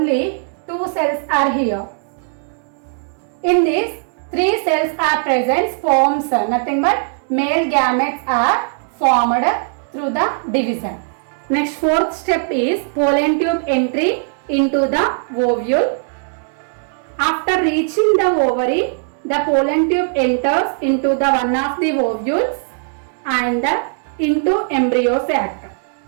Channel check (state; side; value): silent; left; 67 dB below the other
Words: 2 cells are here. In this, 3 cells are present, sperms, nothing but male gametes are formed through the division. Next, fourth step is pollen tube entry into the ovule. After reaching the ovary, the pollen tube enters into the one of the ovules and into embryo sac.